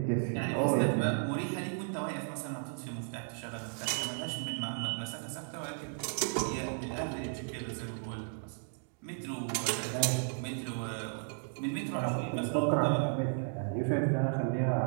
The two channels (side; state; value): left; silent; 55 dB below the other